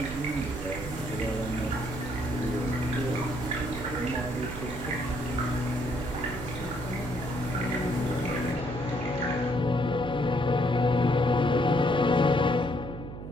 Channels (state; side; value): noise; right; hum, 10 dB below the sound